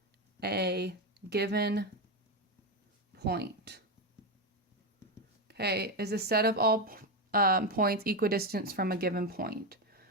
a given point. Okay, is a set of all points equidistant from a given point.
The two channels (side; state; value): both; normal; correlation 0.11